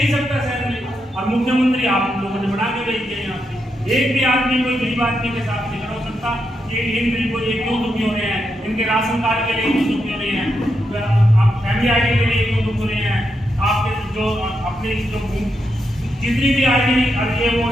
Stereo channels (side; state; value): both; normal; correlation 0.83